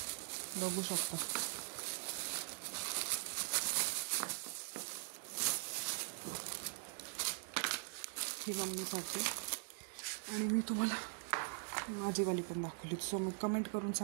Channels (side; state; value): left; silent; digital silence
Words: बघू शकता. ही मम्मीसाठी. आणि मी तुम्हाला माझीवाली पण दाखवली. सो मग कमेंट करून